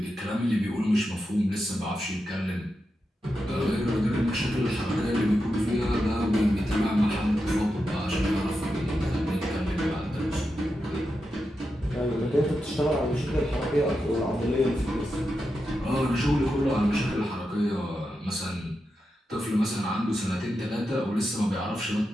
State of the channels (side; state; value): both; normal; correlation 0.88